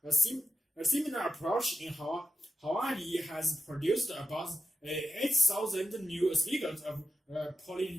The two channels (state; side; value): normal; both; correlation 0.88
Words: A similar approach in Hawaii has produced about 8,000 new speakers of